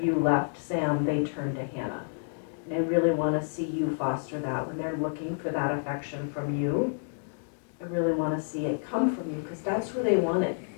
you left, Sam, they turned to Hannah. And I really want to see you foster that when they're looking for that affection from you. I really want to see it come from you, because that's who they wanted.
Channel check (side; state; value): right; silent; digital silence